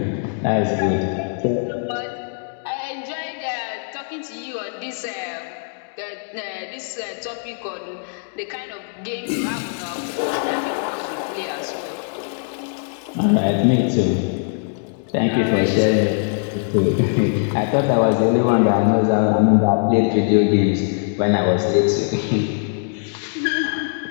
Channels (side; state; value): right; silent; digital silence